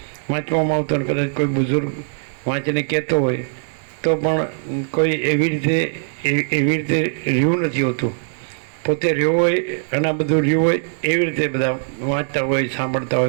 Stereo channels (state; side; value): silent; left; digital silence